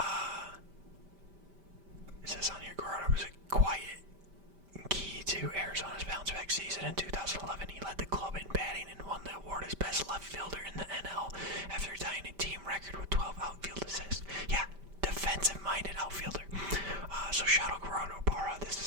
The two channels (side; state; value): left; late; 5.1 ms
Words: It says on here, Gerardo was a quiet key to Arizona's bounce-back season. In 2011, he led the club in batting and won the award as best left fielder in the NL after tying a team record with 12 outfield assists. Yeah, defensive-minded outfielder. So shout out Gerardo Parra. This